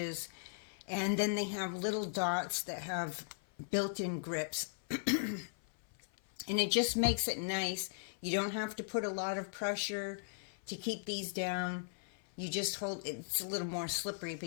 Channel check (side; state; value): right; silent; 53 dB below the other